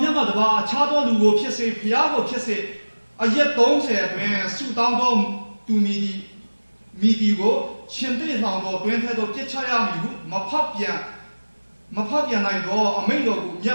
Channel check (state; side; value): inverted; both; correlation -1.00